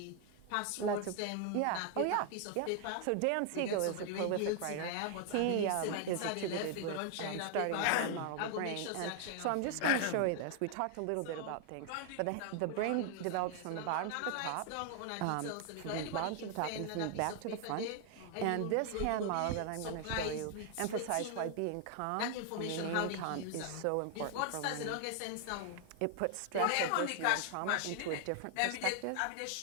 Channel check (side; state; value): both; different; correlation 0.00